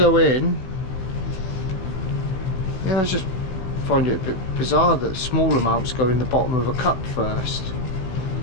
in. Yeah, I just find it a bit bizarre that small amounts go in the bottom of a cup first.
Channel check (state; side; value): late; right; 16 ms